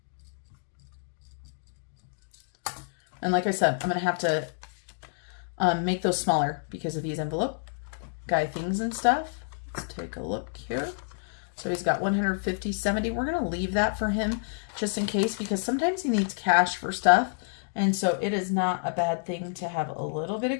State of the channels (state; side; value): silent; right; digital silence